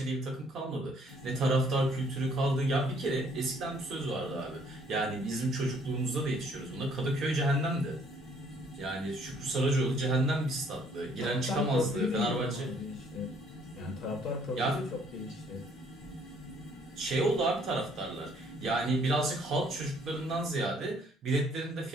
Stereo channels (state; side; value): normal; both; correlation 0.63